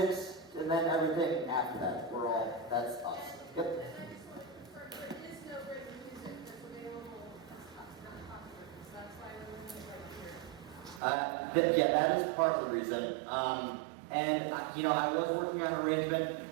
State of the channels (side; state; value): left; drops out; at 11.0 s